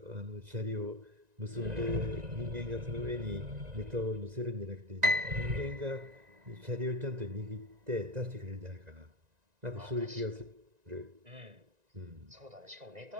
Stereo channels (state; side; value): late; left; 1.9 ms